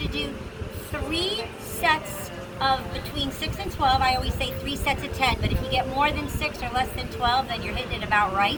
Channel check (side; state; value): both; identical; correlation 1.00